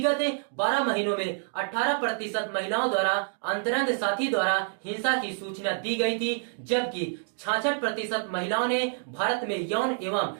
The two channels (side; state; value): left; silent; 58 dB below the other